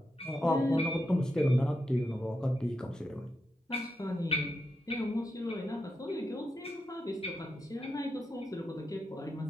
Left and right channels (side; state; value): both; normal; correlation 0.85